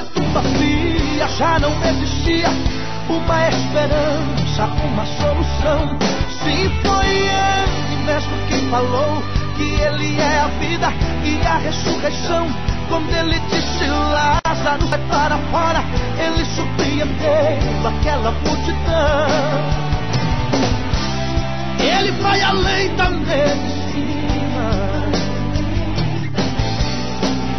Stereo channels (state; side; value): identical; both; correlation 1.00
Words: tumba fria já não existia uma esperança, uma solução. Sim, foi Ele mesmo quem falou que Ele é a vida e a ressurreição. Quando Ele disse Lázaro, sai para fora, Ele surpreendeu aquela multidão. Ele vai além da medicina.